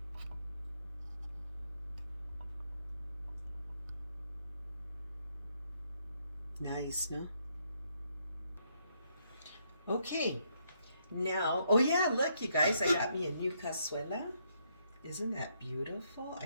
Nice, no? Okay, now, oh yeah, look, you guys, I got me a new cazuela. Isn't that beautiful? I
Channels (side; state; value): both; inverted; correlation -0.74